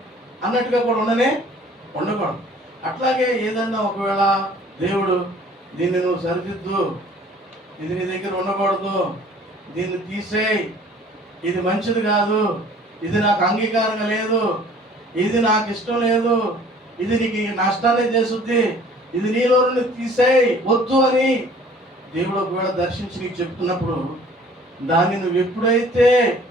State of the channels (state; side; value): normal; both; correlation 0.52